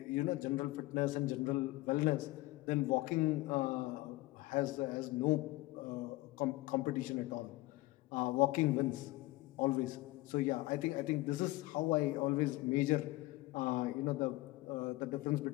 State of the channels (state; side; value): quieter; right; 19.7 dB